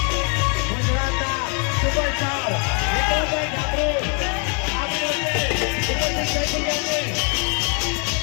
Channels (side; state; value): right; quieter; 38.1 dB